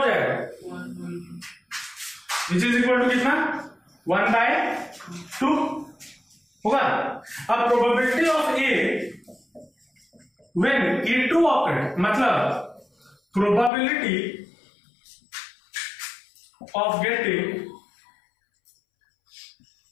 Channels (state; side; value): drops out; right; at 13.7 s